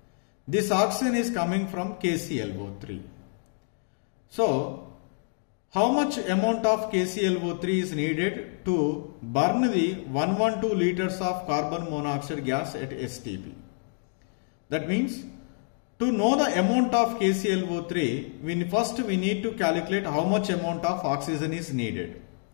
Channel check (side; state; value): right; silent; 60 dB below the other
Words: This oxygen is coming from KClO3. So how much amount of KClO3 is needed to burn the 112 liters of carbon monoxide gas at STP? That means, to know the amount of KClO3, we need to calculate how much amount of oxygen is needed.